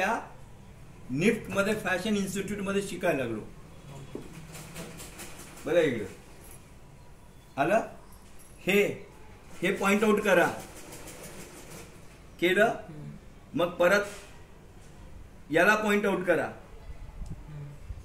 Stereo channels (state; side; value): identical; both; correlation 1.00